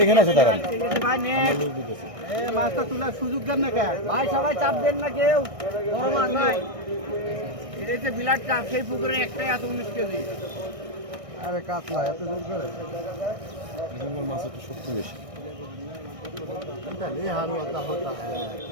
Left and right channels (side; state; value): left; late; 1.6 ms